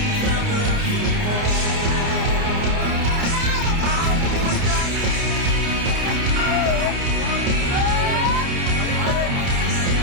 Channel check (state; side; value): late; left; 29 ms